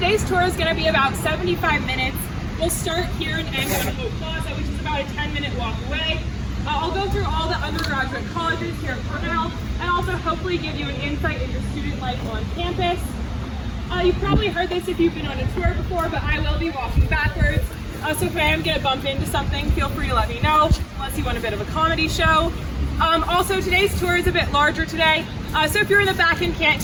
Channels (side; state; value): both; identical; correlation 1.00